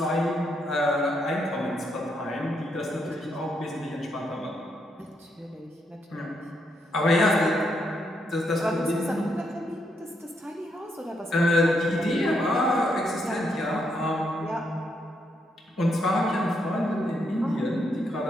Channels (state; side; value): normal; both; correlation 0.78